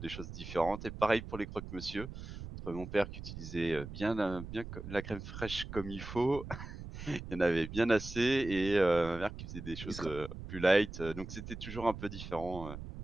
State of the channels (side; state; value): right; noise; rumble, 10 dB below the sound